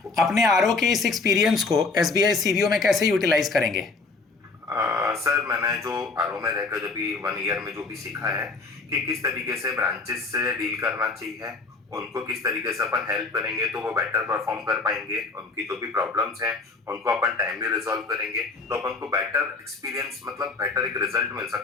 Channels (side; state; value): right; quieter; 4.0 dB